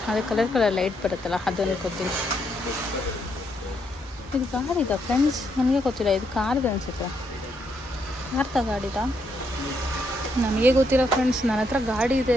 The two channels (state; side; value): normal; both; correlation 0.76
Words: ಅದೇ ಕಲರ್ ಲೈಟ್ ಬರುತ್ತಲ್ಲ, ಅದು ಅನ್ಕೋತೀನಿ. ಇದು ಗಾಡಿದ ಫ್ರೆಂಡ್ಸ್, ನನಗೆ ಗೊತ್ತಿಲ್ಲ. ಇದು ಕಾರ್ದು ಅನಿಸುತ್ತೆ. ಯಾರ್ದ ಗಾಡಿದ ನನಗೆ ಗೊತ್ತಿಲ್ಲ ಫ್ರೆಂಡ್ಸ್. ನನ್ನ ಹತ್ರ ಗಾಡಿ ಇದೆ